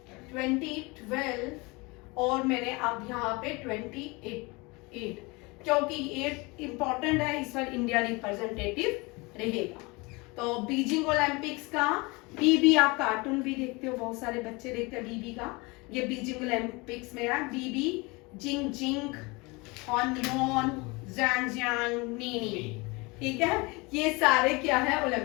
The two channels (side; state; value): right; quieter; 25.9 dB